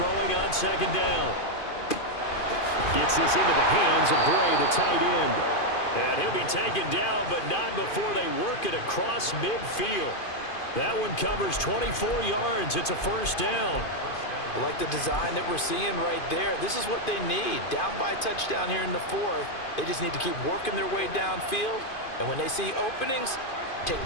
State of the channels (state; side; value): late; right; 2.5 ms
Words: on 2nd down. Gets this into the hands of Bray, the tight end. And he'll be taken down, but not before they work it across midfield. That one covers 24 yards. It's a 1st down. I like the design that we're seeing right there. This is what they need. Down by a touchdown here in the 4th. They just need to keep working their way downfield. And when they see openings, take